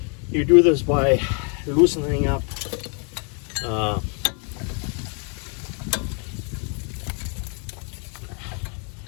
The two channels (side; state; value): right; quieter; 38.9 dB